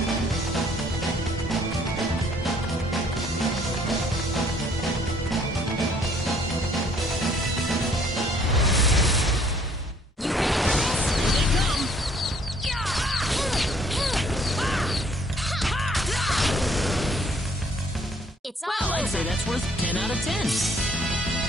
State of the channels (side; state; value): both; normal; correlation 0.61